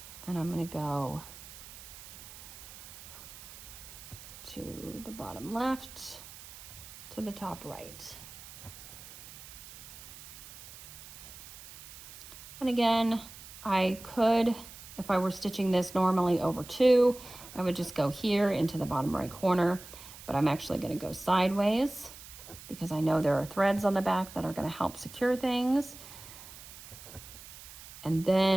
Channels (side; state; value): right; noise; hiss, 16 dB below the sound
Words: And I'm going to go to the bottom left to the top right. And again, I could, if I were stitching this normally over 2, I would just go here into the bottom right corner, but I'm actually going to go sideways because I know there are threads on the back that are going to help secure things. And